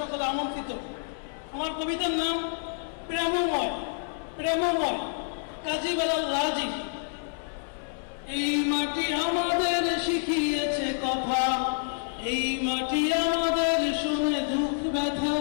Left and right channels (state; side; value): silent; right; 59 dB below the other